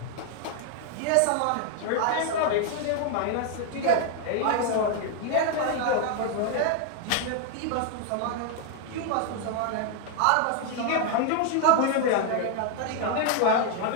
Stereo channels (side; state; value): both; different; correlation 0.00